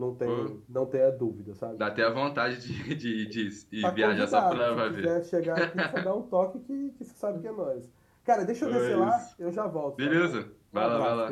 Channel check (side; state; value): both; identical; correlation 1.00